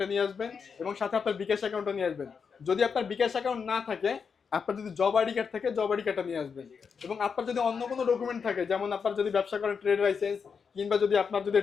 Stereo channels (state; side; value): quieter; right; 6.0 dB